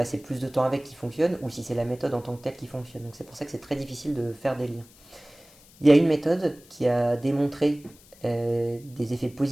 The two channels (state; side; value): noise; left; hiss, 25 dB below the sound